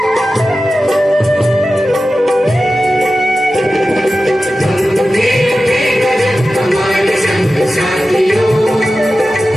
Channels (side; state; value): both; normal; correlation 0.94